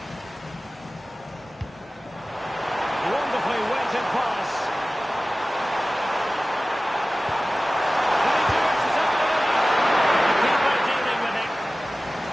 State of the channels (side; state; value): both; normal; correlation 0.97